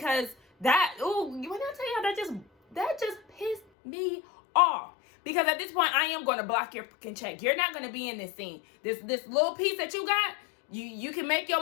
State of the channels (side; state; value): right; drops out; at 3.6 s